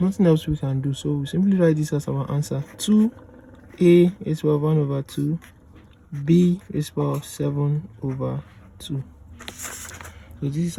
nothing else we can do. So we simply write this as our answer. 2a raised to the power of 1 over 2, b raised to the power of 7 over 2. So this is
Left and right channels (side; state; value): both; identical; correlation 1.00